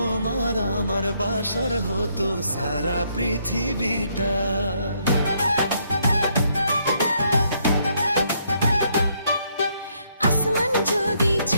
আমার বাসর হতো সারা পৃথিবীটা। আসমান যদি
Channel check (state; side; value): inverted; both; correlation -0.72